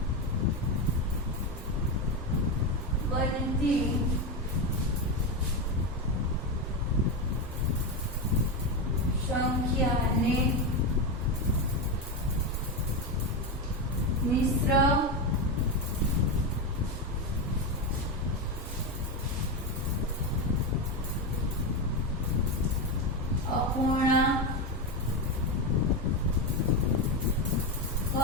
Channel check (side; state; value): both; normal; correlation 0.12